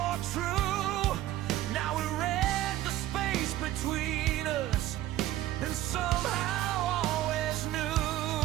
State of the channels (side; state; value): left; quieter; 14.2 dB